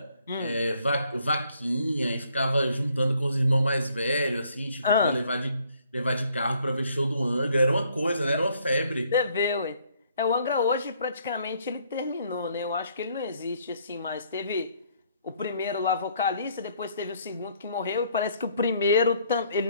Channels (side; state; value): both; inverted; correlation -0.66